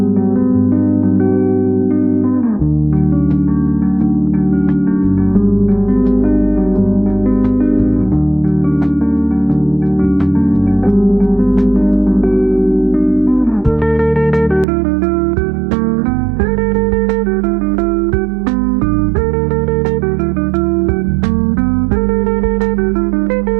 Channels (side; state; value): left; drops out; at 14.7 s